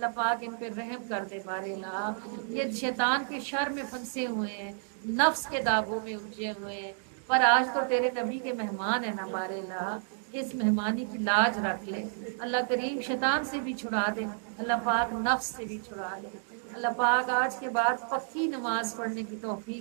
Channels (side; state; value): left; silent; digital silence